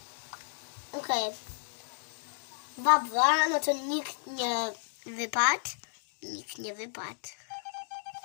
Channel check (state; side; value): silent; right; digital silence